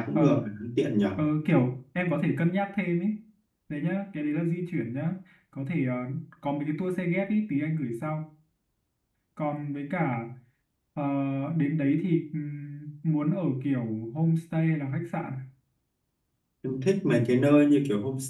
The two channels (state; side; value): identical; both; correlation 1.00